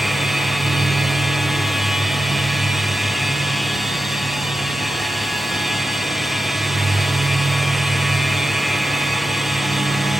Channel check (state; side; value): normal; both; correlation 0.90